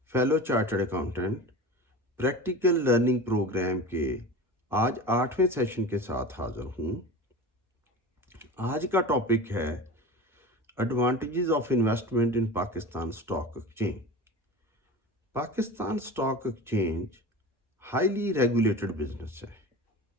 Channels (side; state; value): both; normal; correlation 0.33